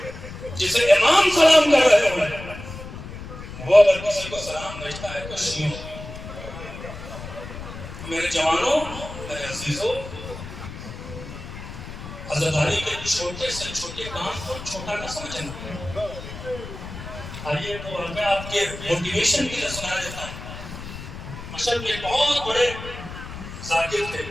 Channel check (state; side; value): noise; left; rumble, 11 dB below the sound